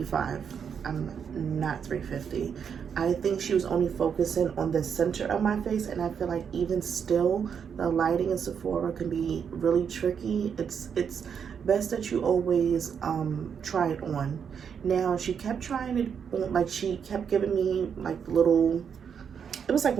I'm not 350. I think she was only focusing on the center of my face, and I feel like even still, the lighting in Sephora can be really tricky. It's best that you always try it on. Now, she kept trying it on, like she kept giving me like little, it was like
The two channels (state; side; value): quieter; left; 7.2 dB